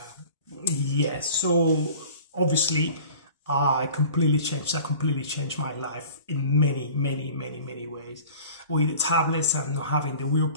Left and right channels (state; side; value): inverted; both; correlation -0.44